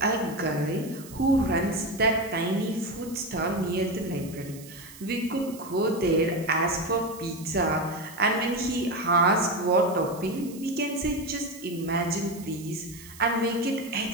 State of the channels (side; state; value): right; noise; hiss, 18 dB below the sound